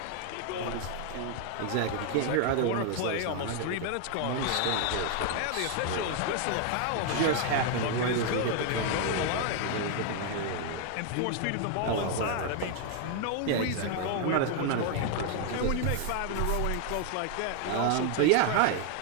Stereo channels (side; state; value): both; different; correlation 0.00